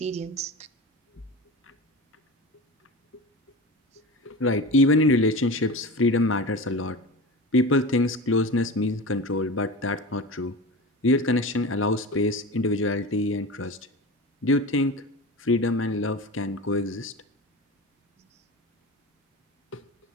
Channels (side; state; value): both; normal; correlation 0.29